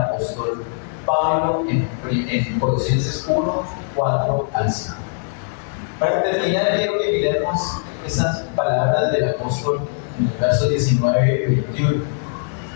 Pablo en Colosenses 1, 4 al 5. Para terminar, quiero que miremos estas palabras del apóstol en el verso 19 y 21.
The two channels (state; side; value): silent; right; 64 dB below the other